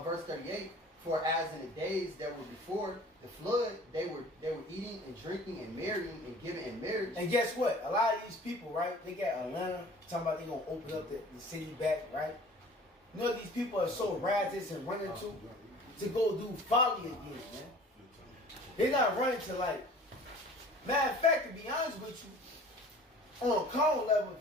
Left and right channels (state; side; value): normal; both; correlation 0.46